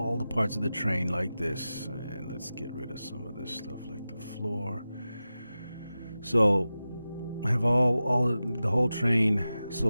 the parts of the train like this, and let's get rid of some of this stuff like the floor. So I have the whole train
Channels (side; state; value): both; inverted; correlation -0.94